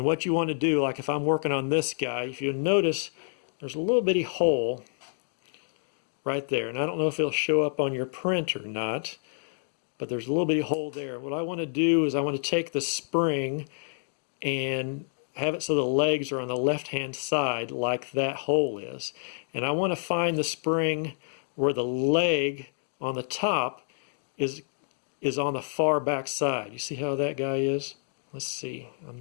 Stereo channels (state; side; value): silent; right; digital silence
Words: what you want to do, like if I'm working on this guy, if you notice, there's a little bitty hole right there, and I don't know if it'll show up on your print or not, but there's a little bitty hole there. What I want to do is I want to take the spring and have it so the legs are on the left hand side like that hole is, and I want to find the spring where the leg on the top is on the far back side. You see how that guy is? Let's see, I'm